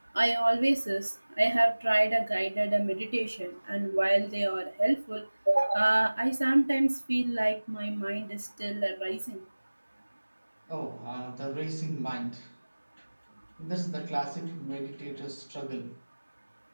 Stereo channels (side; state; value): both; inverted; correlation -1.00